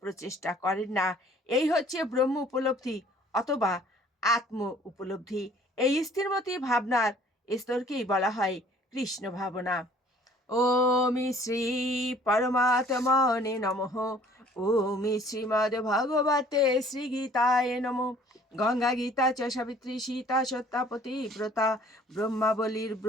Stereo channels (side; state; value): both; normal; correlation 0.55